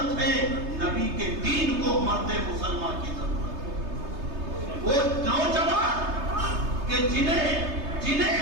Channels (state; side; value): late; left; 3.3 ms